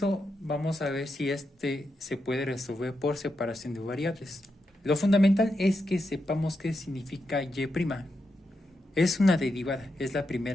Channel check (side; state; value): both; normal; correlation 0.85